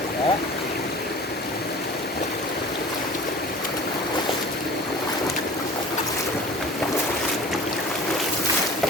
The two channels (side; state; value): both; normal; correlation 0.42